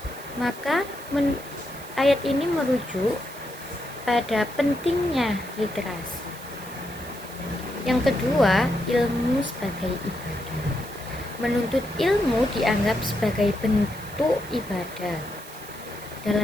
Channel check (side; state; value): right; noise; hiss, 18 dB below the sound